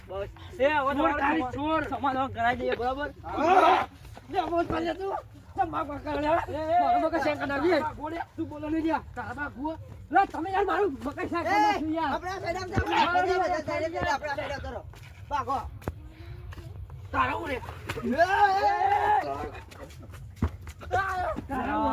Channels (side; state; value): both; identical; correlation 1.00